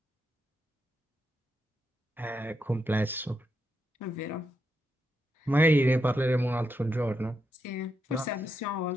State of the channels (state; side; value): normal; both; correlation 0.83